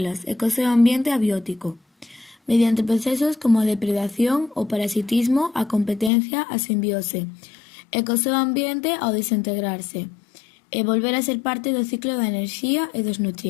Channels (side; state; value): right; drops out; at 6.1 s